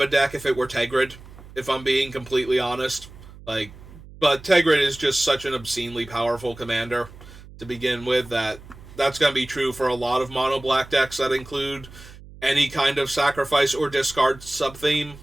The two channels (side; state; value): right; noise; hum, 19 dB below the sound